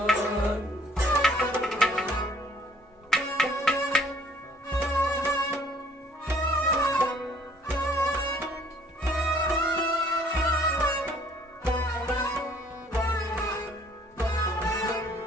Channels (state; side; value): normal; both; correlation 0.59